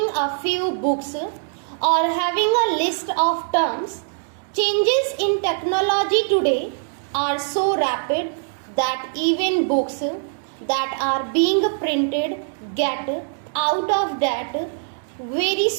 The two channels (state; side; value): silent; left; digital silence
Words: a few books or having a list of terms. Changes in technology today are so rapid that even books that are being printed get out of date very